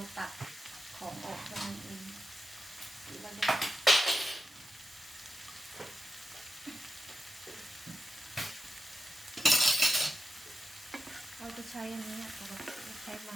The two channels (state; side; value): normal; both; correlation 0.90